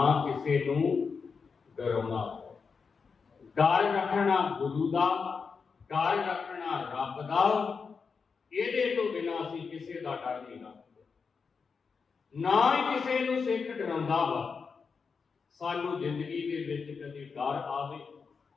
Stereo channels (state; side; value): quieter; right; 5.4 dB